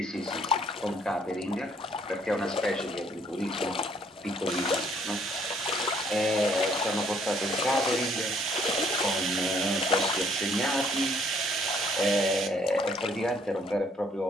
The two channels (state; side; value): normal; both; correlation 0.64